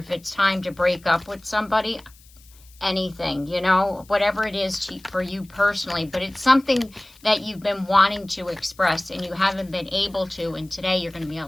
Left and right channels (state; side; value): noise; left; hiss, 26 dB below the sound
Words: it's time to break up with somebody. Anything, you know, whatever it is for you personally, but it's something that you've been wanting to express and you haven't been able to, and today you're going to be